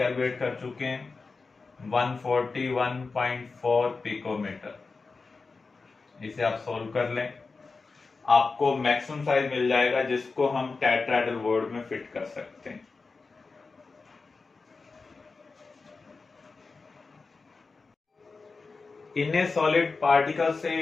कर चुके हैं 141.4 पिकोमीटर। इसे आप सोल्व कर लें, आपको मैक्सिमम साइज मिल जाएगा जिसको हम टेट्राहेड्रल वॉइड में फिट कर सकते हैं। In a solid, particles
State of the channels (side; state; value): right; quieter; 4.2 dB